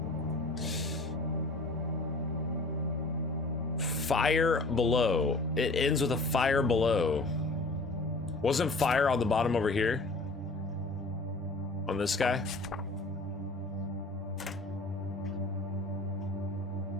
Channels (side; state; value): right; quieter; 3.1 dB